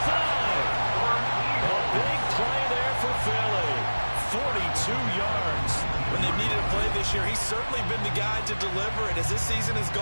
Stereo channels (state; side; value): inverted; both; correlation -1.00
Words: A big play there for Philly. 42 yards. When they've needed a play this year, he's certainly been the guy to deliver it. As this season has